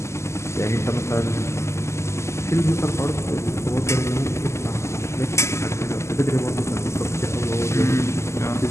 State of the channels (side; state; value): right; late; 0.13 ms